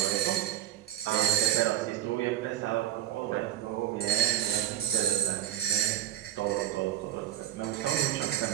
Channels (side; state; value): left; quieter; 12.2 dB